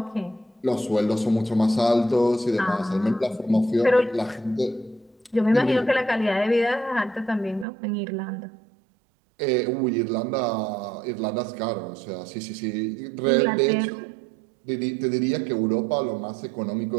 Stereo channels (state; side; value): drops out; left; at 7.7 s